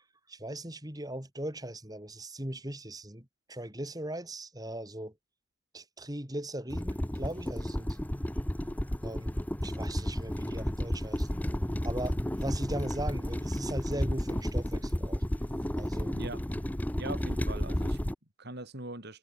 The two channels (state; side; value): normal; both; correlation 0.92